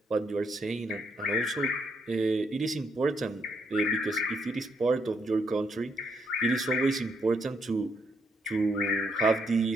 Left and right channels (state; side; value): normal; both; correlation 0.75